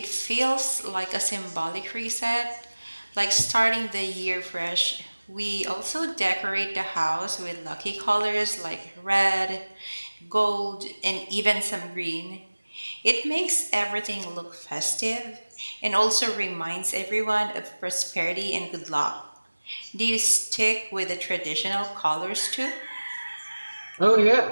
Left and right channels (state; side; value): inverted; both; correlation -1.00